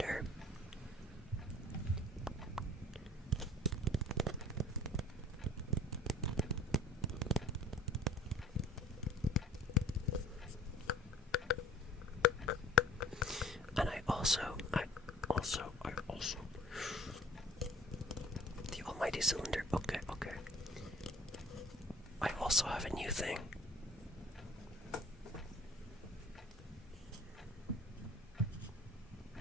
And I also, the almighty cylinder. Okay. I also have a new thing.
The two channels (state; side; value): normal; both; correlation 0.48